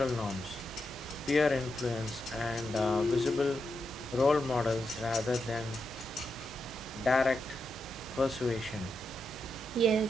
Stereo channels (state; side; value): normal; both; correlation 0.85